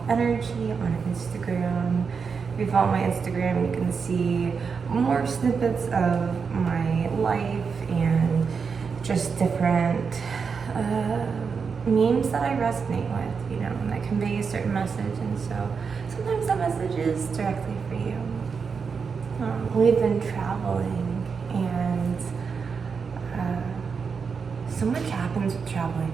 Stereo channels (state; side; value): quieter; left; 5.7 dB